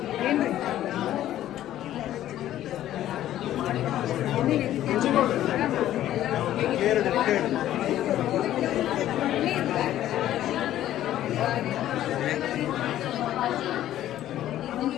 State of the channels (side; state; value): right; quieter; 12.8 dB